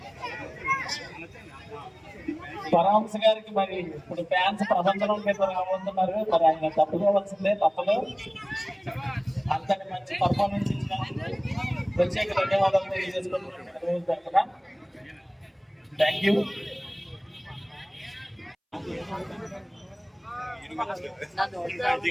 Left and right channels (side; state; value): both; identical; correlation 1.00